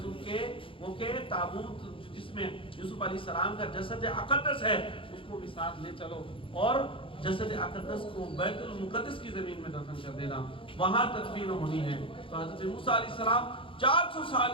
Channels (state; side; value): late; right; 0.25 ms